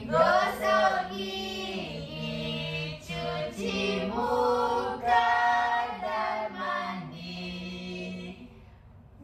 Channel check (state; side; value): identical; both; correlation 1.00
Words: Gosok gigi, cuci muka dan mandi,